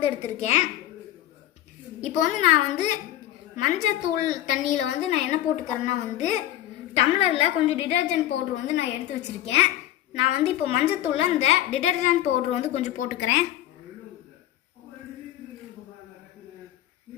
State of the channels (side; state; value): right; quieter; 13.4 dB